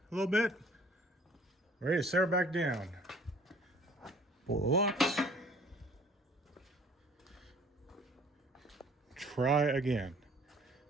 a little bit, ready to set her back down. Pull the locks. Try again.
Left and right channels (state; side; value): normal; both; correlation 0.54